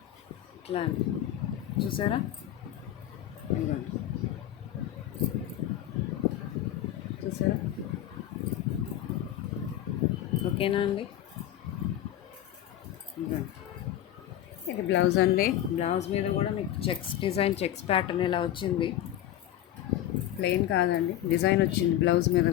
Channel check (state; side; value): quieter; right; 12.3 dB